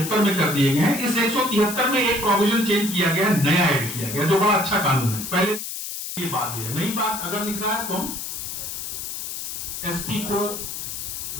में कर दिए गए हैं। इस 173 में एक प्रोविजन चेंज किया गया, नया ऐड किया गया, जो बड़ा अच्छा कानून है। पहले ये बात है, नई बात अगर लिख रहा है तो हम एसपी को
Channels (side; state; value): left; noise; hiss, 6 dB below the sound